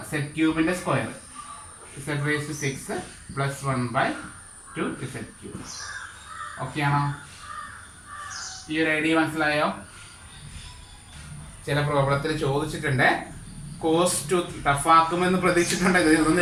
സെഡ് ക്യൂബിന്റെ square Z raise to 6 plus 1/2z cube. Okay ആണോ? ഈ ഒരു ഐഡിയ മനസ്സിലായോ? ചില പ്രോബ്ലത്തിൽ ചോദിച്ചിട്ടുണ്ട്. കോസ് 2 ടഫാക്കുമെന്ന് പ്രതീക്ഷിച്ചിട്ടുണ്ട്.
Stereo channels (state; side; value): identical; both; correlation 1.00